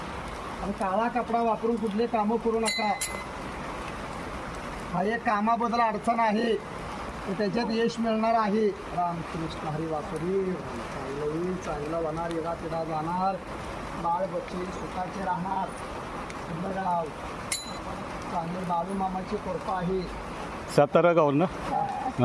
आणि काळा कपडा वापरून कुठले कामं करू नका. हा एक कामाबद्दल अडचण आहे, तर त्याच्यात यश मिळणार आहे. रामकृष्ण हरी वासुरी. चांगलं होईल, चांगलं होणार, येडा पिढा जाणार, बाळ बच्चे सुखाचे राहणार. गाव चांगले बाळू मामाची कृपा आहे. सातारा गाव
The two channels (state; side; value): identical; both; correlation 1.00